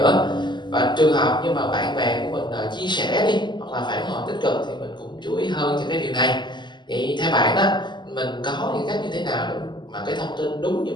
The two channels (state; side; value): late; right; 0.21 ms